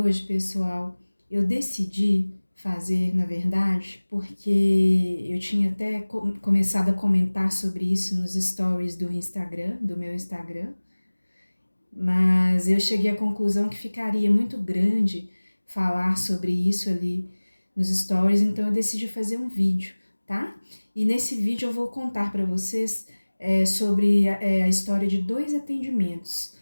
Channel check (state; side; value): inverted; both; correlation -1.00